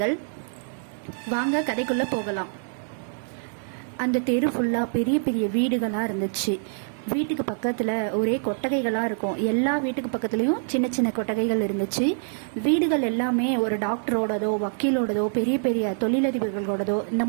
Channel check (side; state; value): left; silent; digital silence